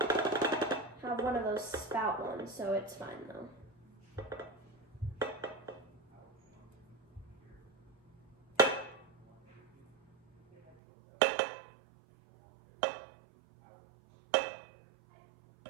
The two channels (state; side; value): drops out; left; at 10.8 s